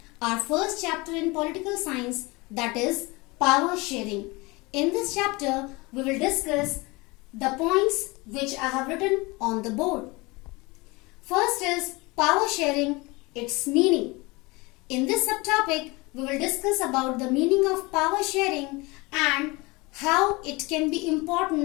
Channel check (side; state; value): right; quieter; 24.4 dB